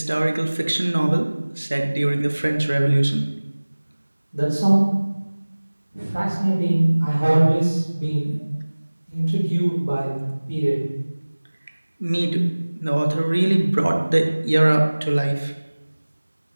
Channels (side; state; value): both; inverted; correlation -1.00